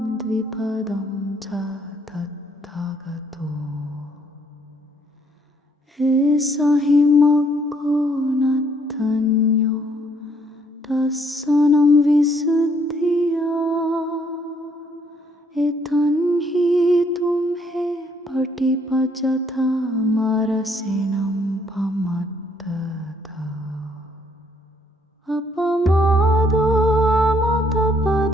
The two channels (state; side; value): normal; both; correlation 0.67